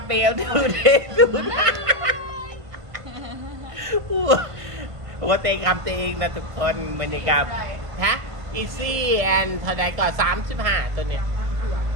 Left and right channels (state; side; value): late; left; 1.5 ms